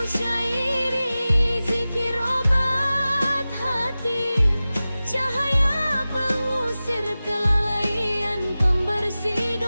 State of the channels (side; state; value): both; inverted; correlation -0.96